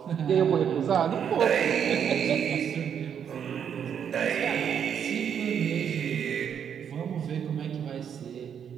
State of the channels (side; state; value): left; quieter; 8.2 dB